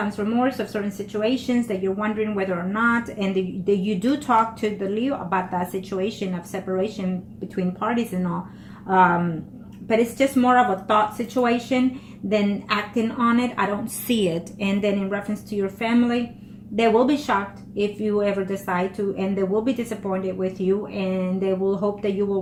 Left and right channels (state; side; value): identical; both; correlation 1.00